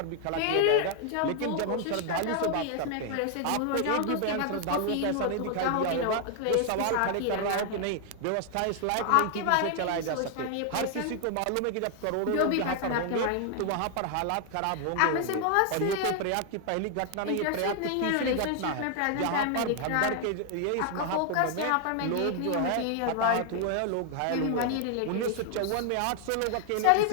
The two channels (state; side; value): different; both; correlation 0.00